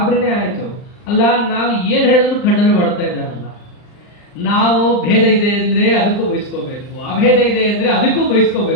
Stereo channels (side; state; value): right; late; 39 ms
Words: ಆಯ್ತು. ಅಲ್ಲ ನಾವು ಏನ್ ಹೇಳಿದ್ರು ಖಂಡನೆ ಮಾಡ್ತಾ ಇದ್ದಾರಲ್ಲ. ನಾವು ಭೇದ ಇದೆ ಅಂದ್ರೆ ಅದಕ್ಕೂ ಬಯಸ್ಕೋಬೇಕು, ಅಭೇದ ಇದೆ ಅಂದ್ರೆ ಅದಕ್ಕೂ